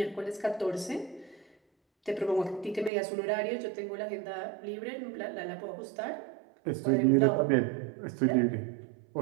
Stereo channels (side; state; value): left; drops out; at 2.9 s